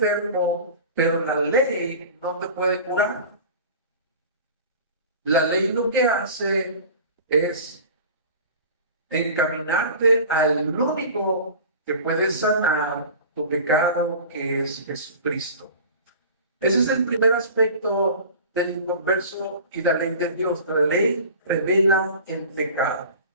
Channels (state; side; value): inverted; both; correlation -0.39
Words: pero la ley no te puede curar. La ley lo que hace es encaminarte al único que puede sanar tu pecado, que es Jesucristo. Ese es el primer aspecto del inconverso y la ley de Dios. La ley revela el pecado.